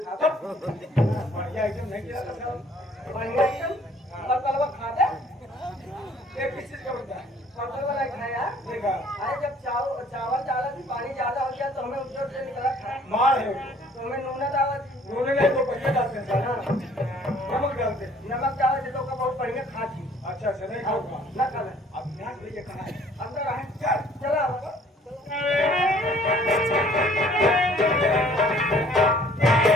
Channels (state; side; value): normal; both; correlation 0.57